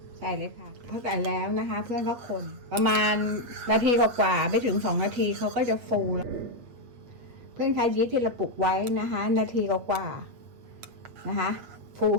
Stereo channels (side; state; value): left; late; 8.3 ms